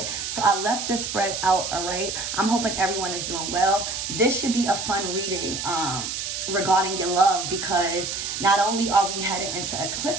So I left this spread out, all right? I'm hoping everyone is doing well. This should be a fun reading regarding your love, because not only are we headed into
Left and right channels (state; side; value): noise; right; hiss, 4 dB below the sound